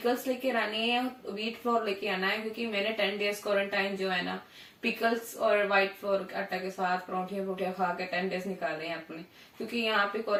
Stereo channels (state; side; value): identical; both; correlation 1.00